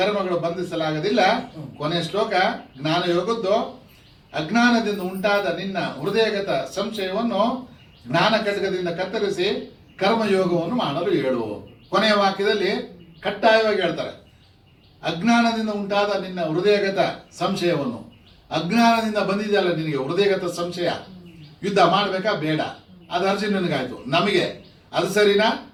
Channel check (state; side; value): identical; both; correlation 1.00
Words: ಬಂಧಿಸಲಾಗದಿಲ್ಲ. ಕೊನೆ ಶ್ಲೋಕ ಜ್ಞಾನ ಯೋಗದ್ದು. ಅಜ್ಞಾನದಿಂದ ಉಂಟಾದ ನಿನ್ನ ಹೃದಯಗತ ಸಂಶಯವನ್ನು ಜ್ಞಾನ ಖಡ್ಗದಿಂದ ಕತ್ತರಿಸಿ ಕರ್ಮಯೋಗವನ್ನು ಮಾಡಲು ಹೇಳು. ಕೊನೆಯ ವಾಕ್ಯದಲ್ಲಿ ಕಡ್ಡಾಯವಾಗಿ ಹೇಳ್ತಾರೆ, ಅಜ್ಞಾನದಿಂದ ಉಂಟಾದ ನಿನ್ನ ಹೃದಯಗತ ಸಂಶಯವನ್ನು. ಅಜ್ಞಾನದಿಂದ ಬಂದಿದೆಯಲ್ಲ ನಿನಗೆ ಹೃದಯಗತ ಸಂಶಯ, ಯುದ್ಧ ಮಾಡಬೇಕಾ ಬೇಡ, ಅದು ಅರ್ಜುನನಿಗಾಯ್ತು. ನಮಗೆ ಅದು ಸರಿನಾ,